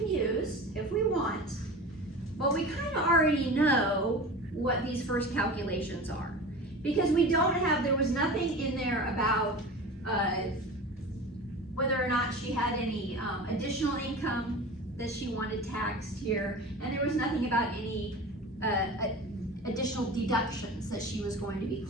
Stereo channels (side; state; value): both; normal; correlation 0.34